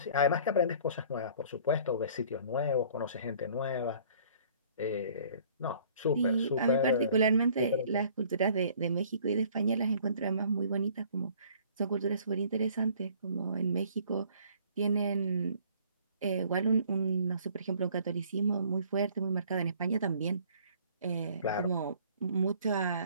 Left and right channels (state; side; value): inverted; both; correlation -0.55